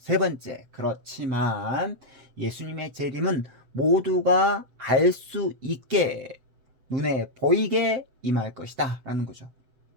그렇지만 예수님의 재림은 모두가 알 수 있게 눈에 보이게 임할 것이다 라는 거죠.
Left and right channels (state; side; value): late; left; 7.9 ms